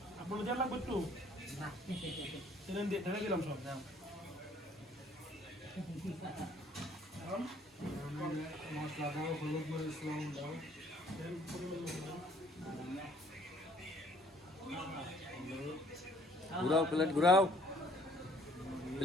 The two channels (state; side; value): normal; both; correlation 0.60